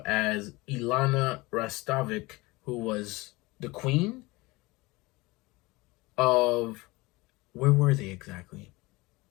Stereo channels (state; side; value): quieter; right; 22.6 dB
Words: as Ilana Rastovic, who was the queen of... Where were they exactly?